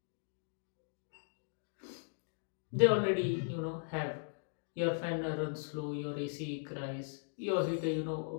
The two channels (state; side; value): silent; right; digital silence